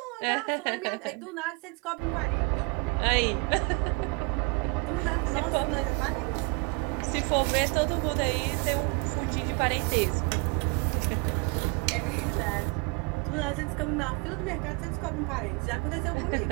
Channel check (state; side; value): quieter; left; 29.7 dB